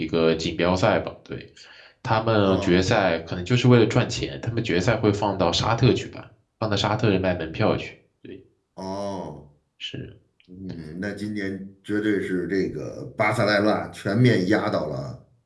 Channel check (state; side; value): identical; both; correlation 1.00